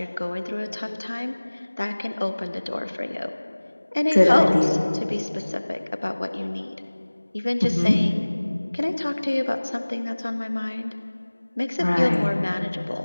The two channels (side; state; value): both; inverted; correlation -1.00